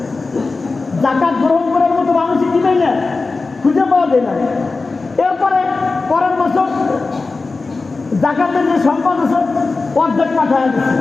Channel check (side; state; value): right; quieter; 3.8 dB